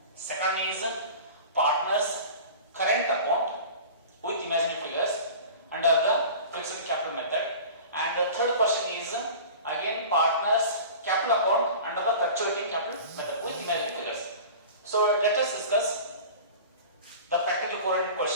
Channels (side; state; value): both; inverted; correlation -0.38